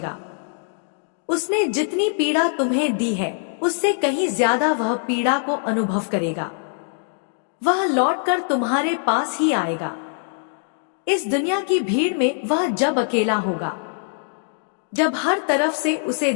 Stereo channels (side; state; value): right; silent; 64 dB below the other